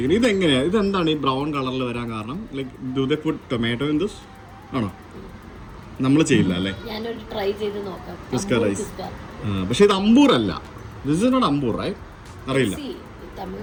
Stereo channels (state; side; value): identical; both; correlation 1.00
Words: ഇതെങ്ങനെയാണ്, ഇതെന്താണ് ഈ ബ്രൗൺ കളറിൽ വരാൻ കാരണം? Like do they put tomato in this ആണോ? നമ്മൾ ചെയ്യില്ല അല്ലേ? കുസ്ക റൈസ്. പക്ഷെ ഇത് അമ്പൂർ അല്ല. This is not Ambur, right? അറിയില്ല.